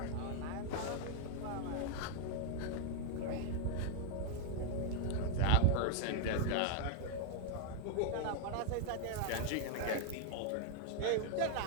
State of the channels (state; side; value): different; both; correlation 0.00